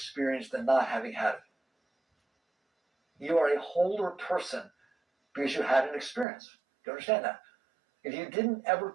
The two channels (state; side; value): drops out; left; at 6.2 s